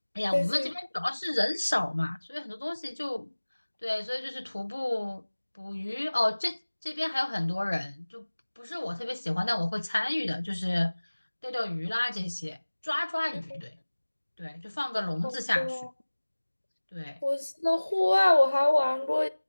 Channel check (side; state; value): both; inverted; correlation -1.00